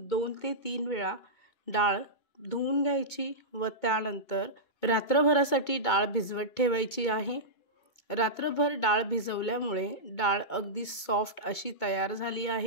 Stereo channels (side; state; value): right; late; 2.2 ms